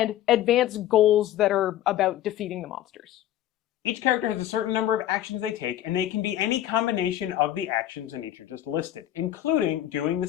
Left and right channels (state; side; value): quieter; right; 12.4 dB